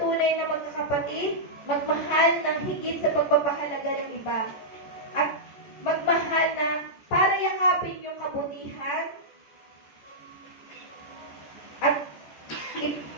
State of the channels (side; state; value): right; late; 14 ms